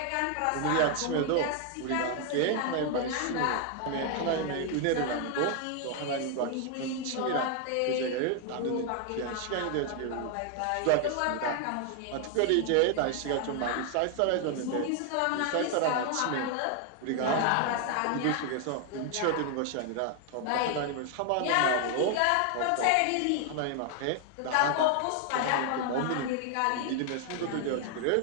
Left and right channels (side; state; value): both; different; correlation 0.00